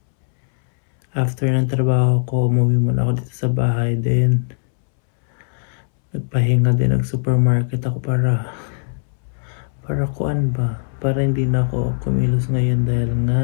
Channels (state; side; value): silent; right; 66 dB below the other